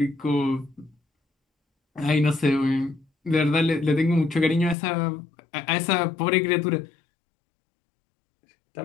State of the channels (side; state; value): right; drops out; at 4.8 s